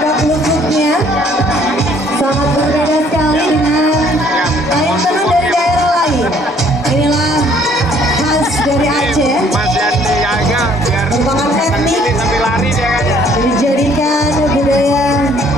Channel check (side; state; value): both; normal; correlation 0.60